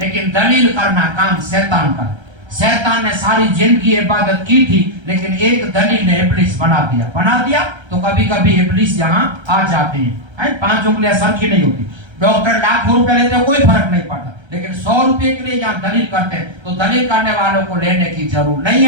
दलील करना काम शैतान का। शैतान ने सारी जिंदगी इबादत की थी, लेकिन एक दलील ने इब्लिस बना दिया तो कभी कभी इब्लिस यहाँ आ जाते हैं। 5 उंगलियां सर की नहीं होती। डॉक्टर लाखों रुपए लेते हैं, कोई फर्क नहीं पड़ता, लेकिन 100 रुपए के लिए यहाँ दलील करते हैं, तो दलील करने वालों को लेने की जरूरत नहीं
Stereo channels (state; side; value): late; left; 1.3 ms